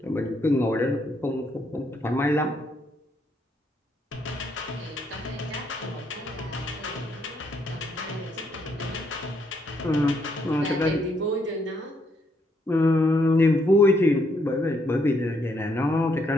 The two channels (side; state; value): both; normal; correlation 0.74